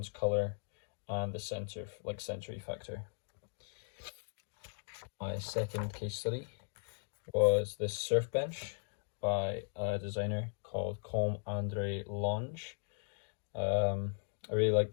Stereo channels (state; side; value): silent; right; digital silence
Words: colour, and the sensory factor. My second case study was this surf bench by a designer called Com Andre Lange. I really like